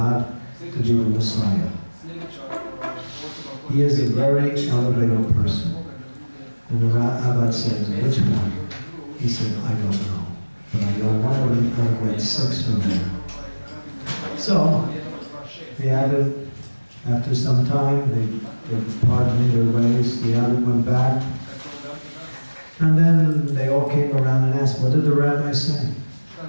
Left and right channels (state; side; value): inverted; both; correlation -1.00